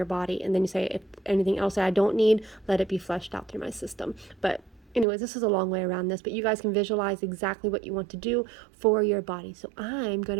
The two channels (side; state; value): left; drops out; at 5.1 s